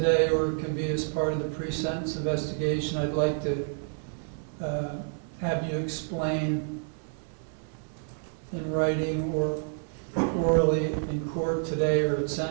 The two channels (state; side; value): silent; left; 59 dB below the other